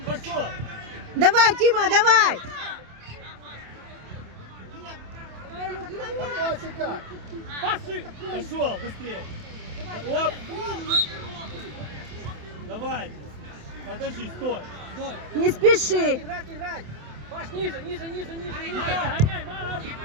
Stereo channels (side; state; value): left; late; 27 ms